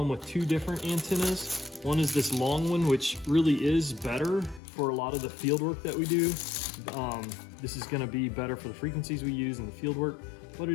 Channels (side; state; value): right; drops out; at 4.6 s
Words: with two different antennas. One is this long one, which really is better for a lot of the field work that we do. This is going to be better for the frequencies we use in the field work, but